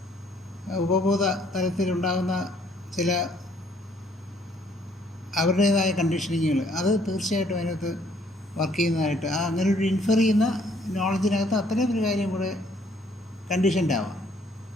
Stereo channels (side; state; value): both; normal; correlation 0.64